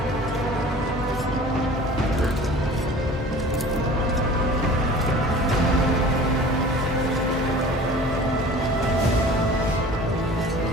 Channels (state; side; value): normal; both; correlation 0.43